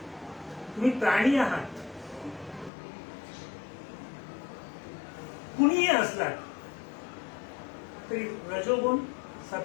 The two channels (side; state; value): right; drops out; at 2.7 s